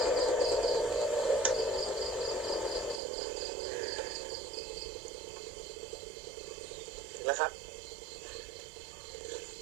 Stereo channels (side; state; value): left; drops out; at 3.0 s